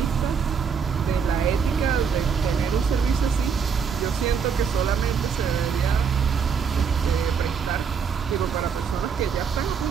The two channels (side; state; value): left; quieter; 6.5 dB